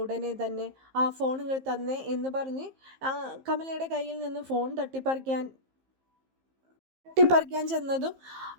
ഉടനെ തന്നെ ആ ഫോൺ ഇങ്ങോട്ട് തന്നേ എന്ന് പറഞ്ഞ് കമലയുടെ കയ്യിൽ നിന്ന് ഫോൺ തട്ടിപ്പറിക്കാൻ ചെന്നതും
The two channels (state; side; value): late; left; 15 ms